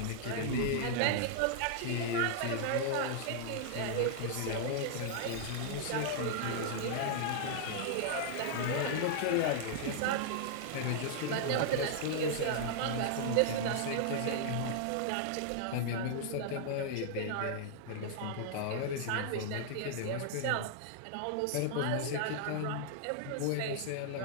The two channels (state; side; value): different; both; correlation -0.01